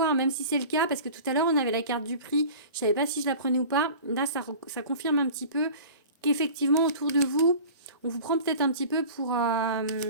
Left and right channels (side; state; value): both; inverted; correlation -0.40